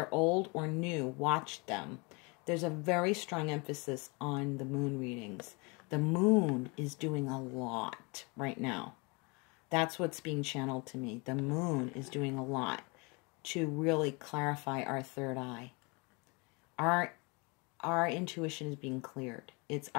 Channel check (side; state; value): right; quieter; 29.4 dB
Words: old or new, watch them. There's a very strong emphasis on the moon readings. The moon is doing a lot right now. That's what's being channeled to me. The moon is doing a lot to really clarify our third eye. Our intuition is being cleared. It's